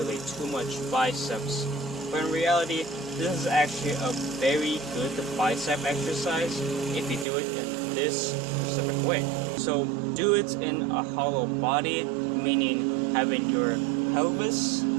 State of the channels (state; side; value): drops out; left; at 7.2 s